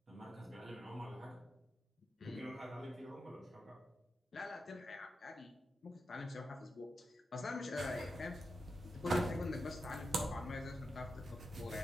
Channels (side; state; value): both; normal; correlation 0.88